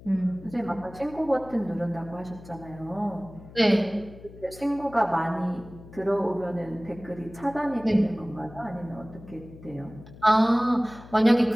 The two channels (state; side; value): noise; left; hum, 18 dB below the sound